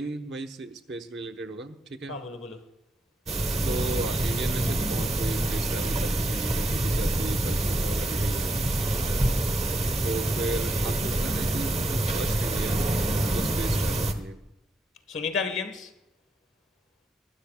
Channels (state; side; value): normal; both; correlation 0.79